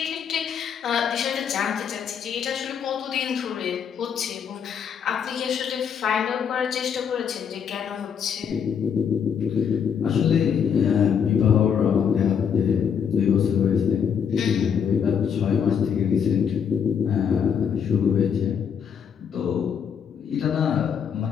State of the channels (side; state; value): right; quieter; 7.5 dB